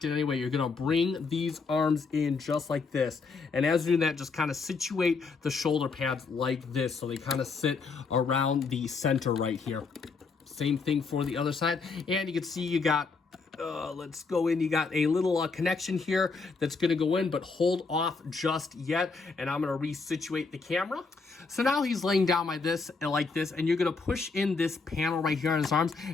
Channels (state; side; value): quieter; right; 4.5 dB